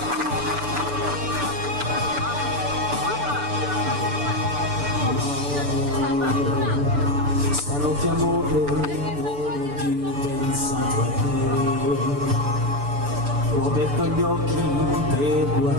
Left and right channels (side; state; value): left; late; 6.9 ms